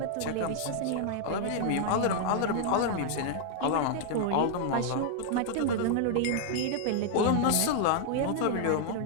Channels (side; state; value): both; different; correlation 0.00